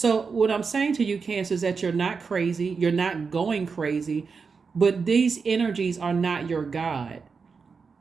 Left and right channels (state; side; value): quieter; left; 5.2 dB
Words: what I'm saying to you, Cancer, is that you're not crazy. You're not going crazy, but these energies are not your God.